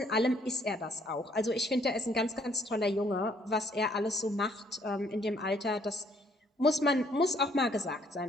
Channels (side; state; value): both; normal; correlation 0.65